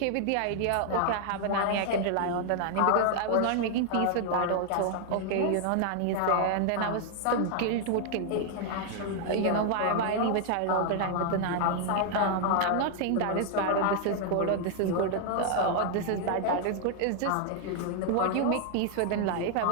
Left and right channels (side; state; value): both; different; correlation 0.00